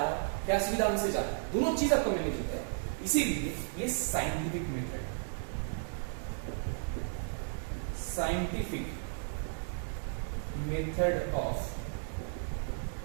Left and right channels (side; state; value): left; silent; digital silence